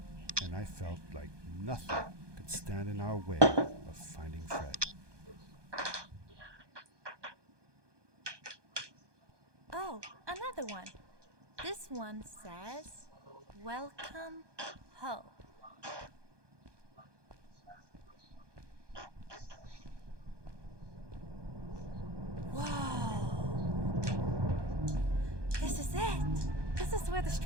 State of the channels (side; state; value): left; late; 1.2 ms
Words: and I felt like nothing could stand in our way of finding Fred. Oh, another one. This one says, "Welcome home." Whoa! This is it! This is where the